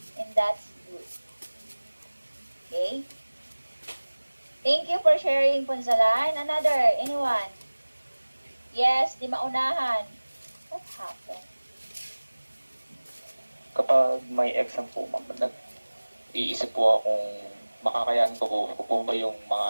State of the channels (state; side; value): inverted; both; correlation -1.00